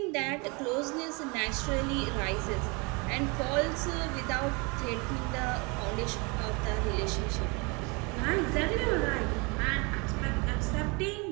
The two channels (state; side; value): quieter; left; 29.4 dB